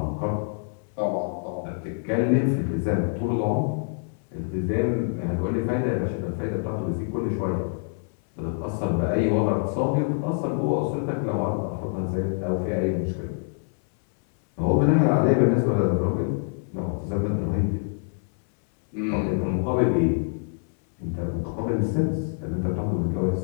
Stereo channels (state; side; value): silent; right; 61 dB below the other